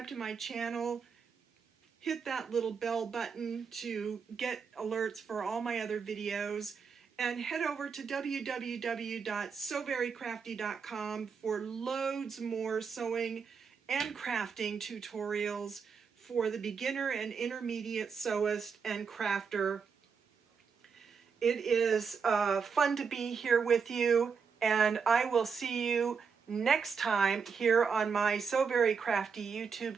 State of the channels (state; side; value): quieter; left; 5.9 dB